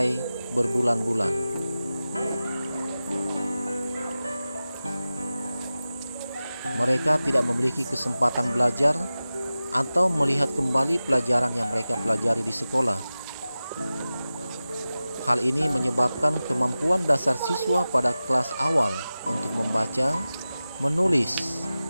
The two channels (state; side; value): inverted; both; correlation -0.95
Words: berbulan-bulan. Mereka tidak memiliki kesempatan belajar atau melihat kembali pelajaran yang mereka pelajari di sekolah. Hal ini menyebabkan kemampuan dasar siswa pada kelas awal untuk membaca, menulis,